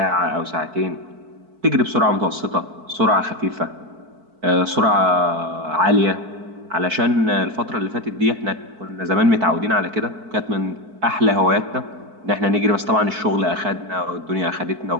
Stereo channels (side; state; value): left; late; 4.5 ms